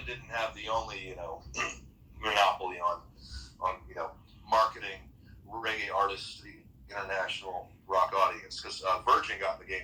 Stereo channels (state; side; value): identical; both; correlation 1.00